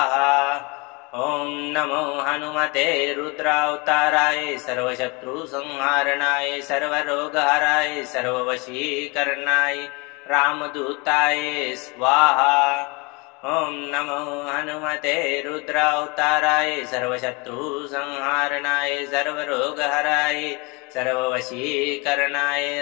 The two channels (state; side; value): quieter; right; 28.4 dB